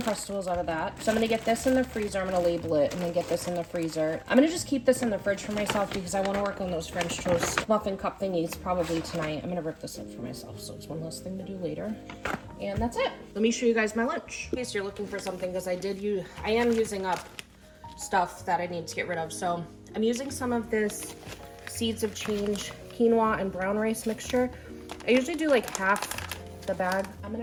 out of that. So I'm gonna get this in the freezer. I'm gonna label it and then get this in the freezer. I'm gonna just keep this in the fridge for myself because I wanna work on those French toast muffin cup thingies probably tonight. I'm gonna rip this up for myself, so it's one less thing to do later. And that's it. Let me show you guys my lunch. In case you're looking for something, because I am using up stuff that I need to get rid of. So I'm using some of this Seeds of Change quinoa and brown rice mixture. I usually do like half the bag. I'm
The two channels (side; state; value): both; identical; correlation 1.00